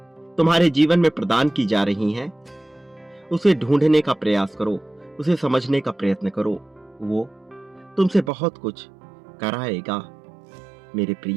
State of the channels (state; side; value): drops out; left; at 8.3 s